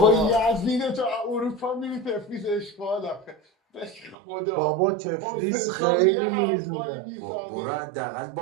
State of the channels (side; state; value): left; drops out; at 4.2 s